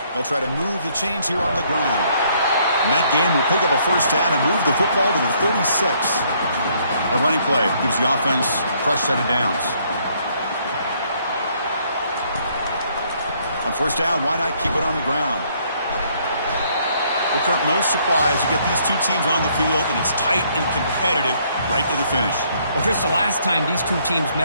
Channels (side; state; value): both; inverted; correlation -0.67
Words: They'll try to move the chains here on the ground. And that game will pick up a first down and move the football to the 36. A running play gives the offense a fresh set of downs. On first down, why not keep it on the ground? Well, Kirk, no surprise. You get these two teams on the field, and it's tight and competitive right to the finish. Well, Chris, the last time these two teams